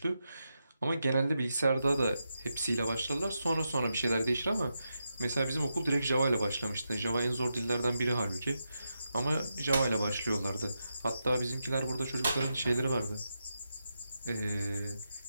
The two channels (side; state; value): both; inverted; correlation -0.87